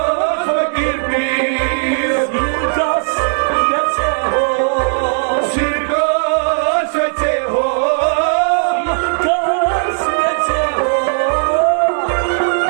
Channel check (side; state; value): left; silent; digital silence